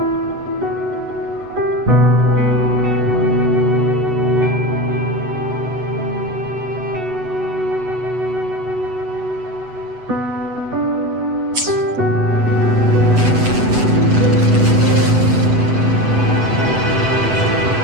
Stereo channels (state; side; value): late; left; 8.1 ms